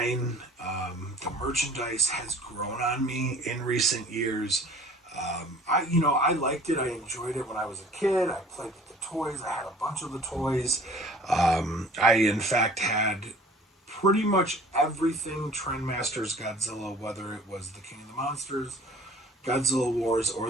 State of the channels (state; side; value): normal; both; correlation 0.49